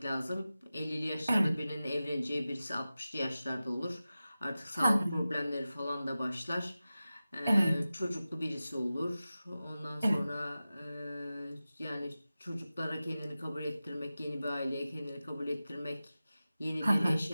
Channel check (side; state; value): both; inverted; correlation -0.95